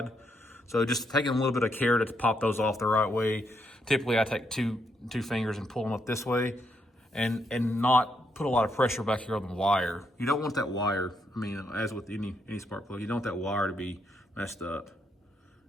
So just taking a little bit of care to pop those off the right way. Typically I take two fingers and pull them up this way, and not put a lot of pressure back here on the wire. You don't want that wire, I mean, as with any spark plug, you don't want that wire to be messed up.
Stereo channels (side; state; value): both; normal; correlation 0.77